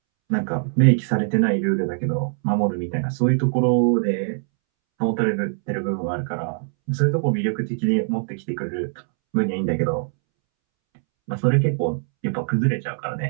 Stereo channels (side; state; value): left; silent; 64 dB below the other